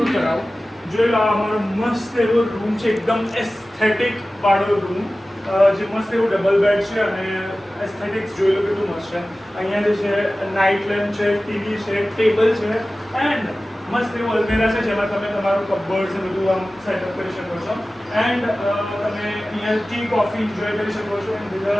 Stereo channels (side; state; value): both; normal; correlation 0.96